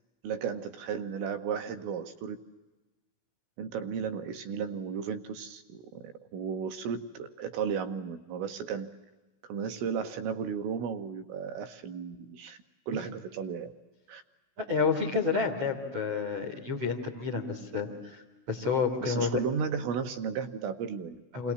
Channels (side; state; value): left; late; 16 ms